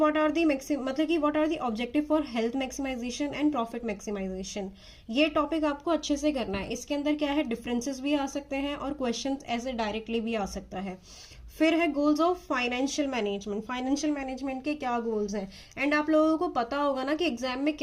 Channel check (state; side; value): identical; both; correlation 1.00